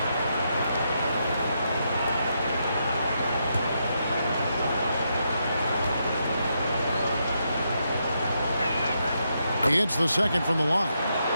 He hits the second from the line.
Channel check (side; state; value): both; inverted; correlation -0.81